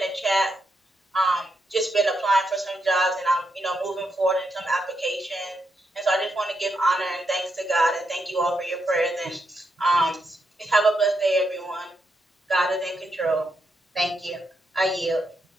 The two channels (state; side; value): normal; both; correlation 0.81